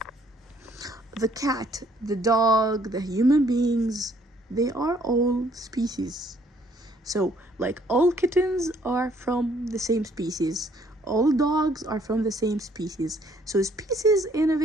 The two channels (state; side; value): normal; both; correlation 0.64